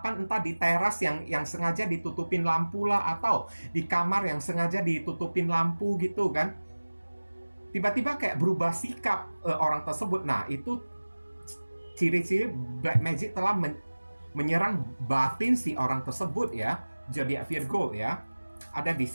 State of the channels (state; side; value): inverted; both; correlation -1.00